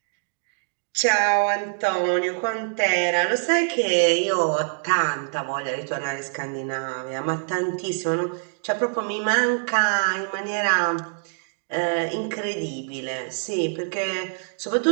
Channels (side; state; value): left; silent; digital silence